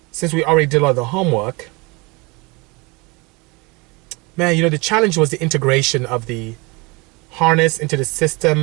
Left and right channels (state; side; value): quieter; left; 26.6 dB